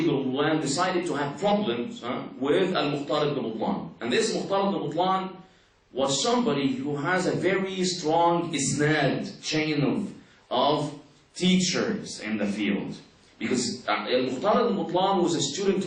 Butlan decided to have problems with Al-Mukhtar ibn Butlan. And this Mukhtar ibn Butlan was somebody who has a very strong isnad, chain of teachers in the field. Because Al-Mukhtar ibn Butlan was a student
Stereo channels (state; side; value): identical; both; correlation 1.00